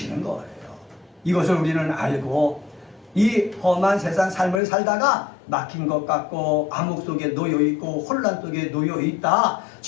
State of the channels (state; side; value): drops out; right; at 4.6 s